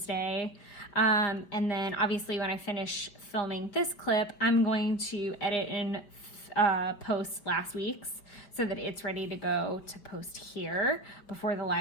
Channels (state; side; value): late; right; 5.4 ms